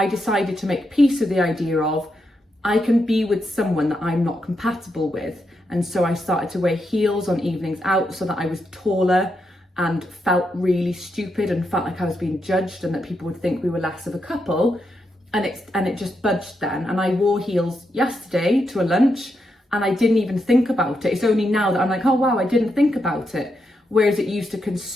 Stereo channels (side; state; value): both; normal; correlation 0.83